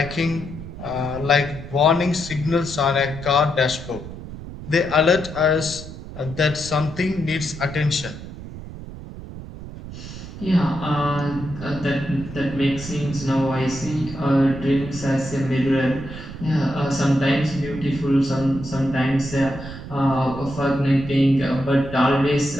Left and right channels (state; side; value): noise; right; rumble, 12 dB below the sound